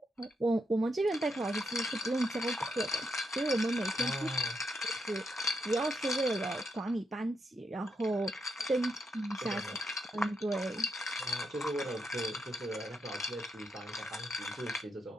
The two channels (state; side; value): normal; both; correlation 0.79